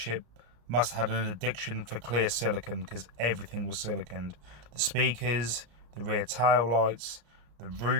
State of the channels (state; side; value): late; left; 34 ms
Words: must have had an addiction for clear silicone because everything was siliconed. The speakers, the rear tail lights, the